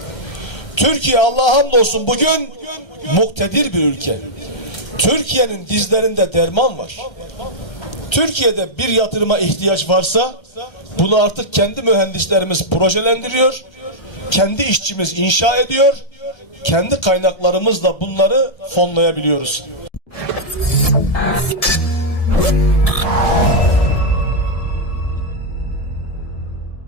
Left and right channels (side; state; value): right; late; 1.3 ms